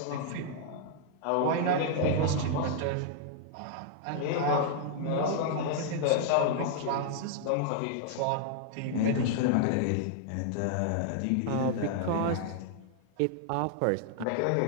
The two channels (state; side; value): different; both; correlation -0.01